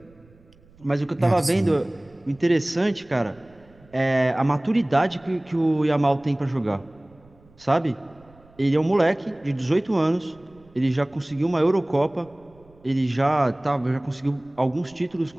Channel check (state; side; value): noise; right; rumble, 28 dB below the sound